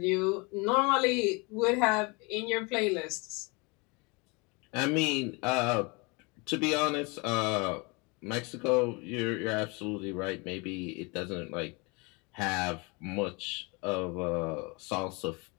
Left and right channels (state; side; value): quieter; right; 28.8 dB